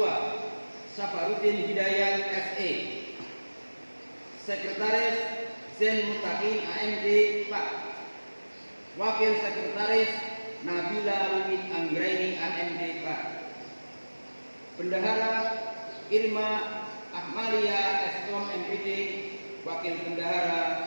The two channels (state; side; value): inverted; both; correlation -1.00